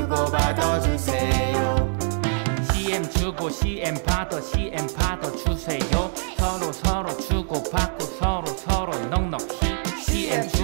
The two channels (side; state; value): left; silent; digital silence